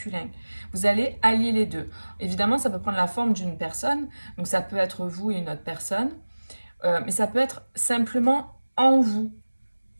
Vous allez allier les deux. Évidemment, ça peut prendre la forme d'une personne, donc ça peut être vous et une autre personne, mais ça peut être simplement en vous,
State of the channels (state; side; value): inverted; both; correlation -1.00